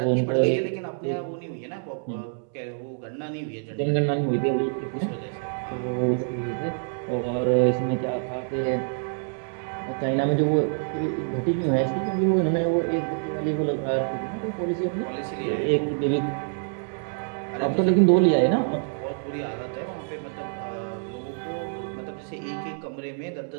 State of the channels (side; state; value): left; silent; 61 dB below the other